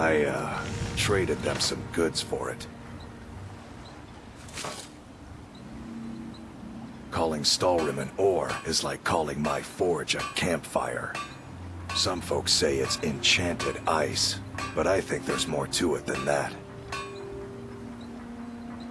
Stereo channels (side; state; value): both; identical; correlation 1.00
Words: traded them some goods for it. Calling Skyrim an ore is like calling my forge a campfire. Some folks say it's enchanted ice, but I think there's more to it than that.